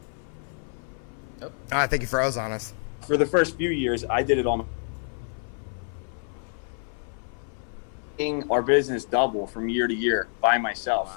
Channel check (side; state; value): right; silent; 56 dB below the other